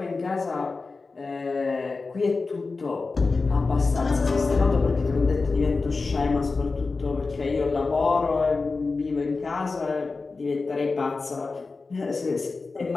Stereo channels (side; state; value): right; quieter; 4.0 dB